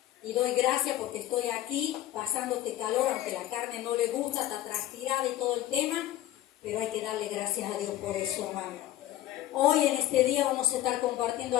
Y doy gracias porque estoy aquí pasando este calor, aunque la carne no le gusta, está transpirada y todo el tema, pero hay que darle gracias a Dios por eso, hermano. Hoy en este día vamos a estar compartiendo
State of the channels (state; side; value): quieter; right; 14.0 dB